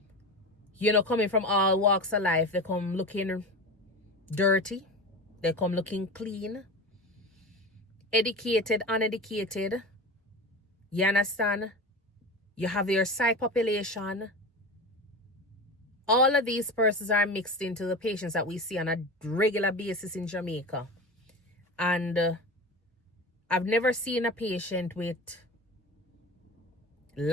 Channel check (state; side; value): normal; both; correlation 0.28